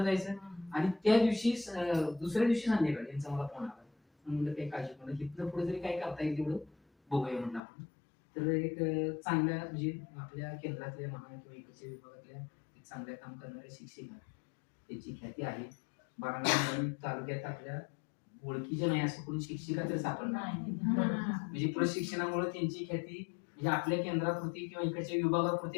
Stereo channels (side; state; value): right; drops out; at 7.6 s